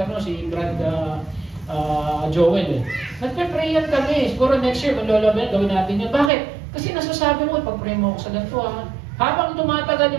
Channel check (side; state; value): left; drops out; at 6.3 s